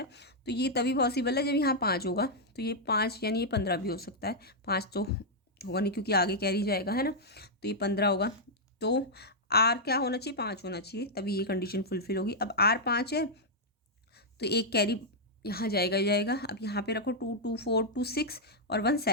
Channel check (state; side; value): normal; both; correlation -0.05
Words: तो ये तभी पॉसिबल है जब यहाँ 5 होगा, तो ये 5 यानी ये 15 भी हो सकता है। 5 तो होगा नहीं, क्योंकि आगे कैरी जाएगा, है ना, तो ये 15 होगा। तो आर क्या होना चाहिए, 5 होना चाहिए, तभी ये कंडीशन फुलफिल होगी। अब आर 5 है, तो एक कैरी यहाँ जाएगा ही जाएगा। अब यहाँ पे रखो 2 2 4 2 6 और 1